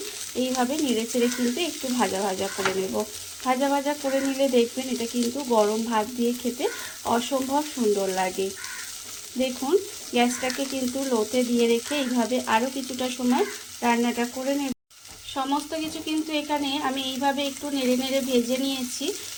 এইভাবে নেড়ে চেড়ে কিন্তু একটু ভাজা ভাজা করে নেব। ভাজা ভাজা করে নিলে দেখবেন এটা কিন্তু গরম ভাত দিয়ে খেতে অসম্ভব সুন্দর লাগে। দেখুন গ্যাসটাকে কিন্তু লোতে দিয়ে রেখে এইভাবে আরও কিছুটা সময় রান্নাটা করে নেব। সমস্ত কিছু কিন্তু এখানে আমি এইভাবে একটু নেড়ে নেড়ে ভেজে নিয়েছি।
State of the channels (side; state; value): both; identical; correlation 1.00